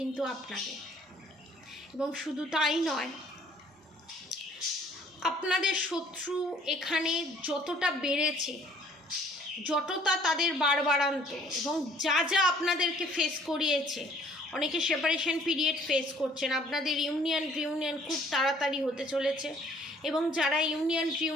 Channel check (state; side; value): normal; both; correlation 0.58